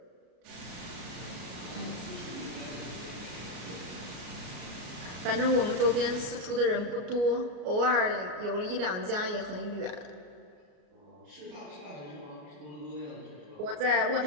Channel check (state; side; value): late; left; 33 ms